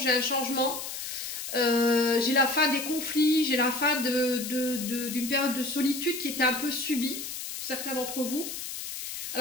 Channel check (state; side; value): noise; left; hiss, 7 dB below the sound